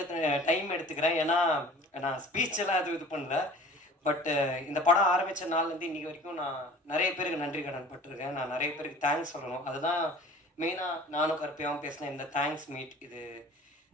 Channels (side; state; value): both; normal; correlation 0.45